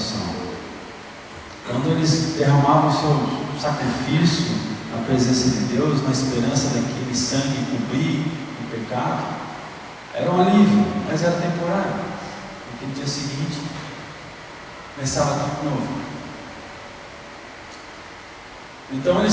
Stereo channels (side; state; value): both; identical; correlation 1.00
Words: Quando eles derramavam o seu sacrifício na presença de Deus, na esperança daquele sangue cobrir o pecado, era um alívio, mas era temporário, porque no dia seguinte começava tudo novo. Então